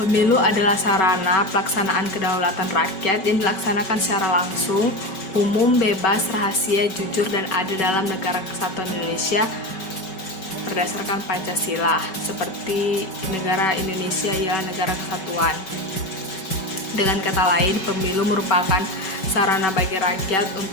adalah sarana pelaksanaan kedaulatan rakyat yang dilaksanakan secara langsung, umum, bebas, rahasia, jujur, dan adil dalam negara kesatuan Indonesia berdasarkan Pancasila, seperti negara Indonesia ialah negara kesatuan. Dengan kata lain, pemilu merupakan sarana bagi rakyat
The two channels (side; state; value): right; late; 5.3 ms